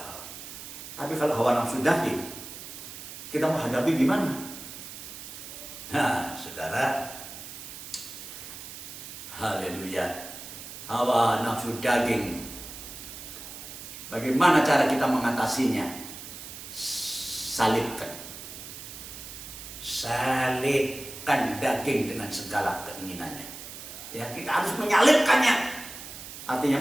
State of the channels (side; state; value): right; noise; hiss, 12 dB below the sound